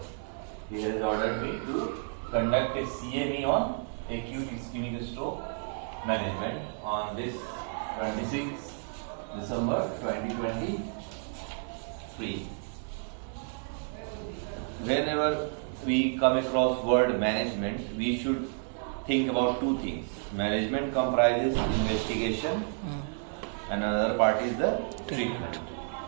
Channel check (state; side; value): silent; left; 57 dB below the other